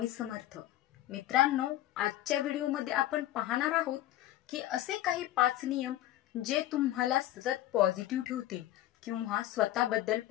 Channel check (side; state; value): right; quieter; 14.2 dB